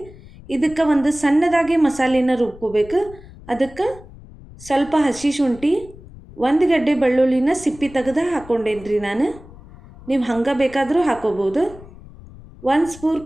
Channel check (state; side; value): noise; left; rumble, 19 dB below the sound